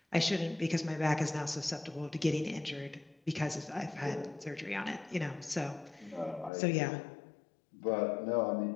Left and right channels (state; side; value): drops out; right; at 6.5 s